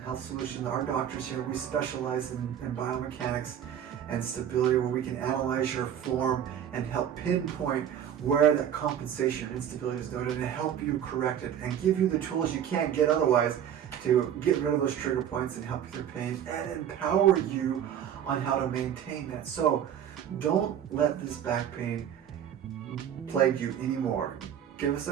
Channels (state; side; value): quieter; left; 9.6 dB